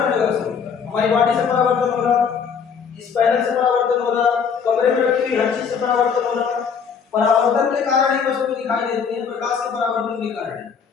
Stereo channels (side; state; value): right; quieter; 6.5 dB